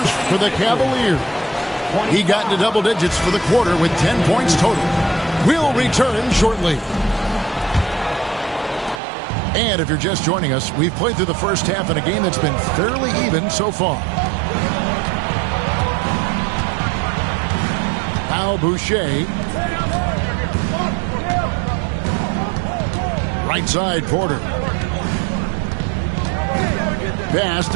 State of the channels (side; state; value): left; drops out; at 9.0 s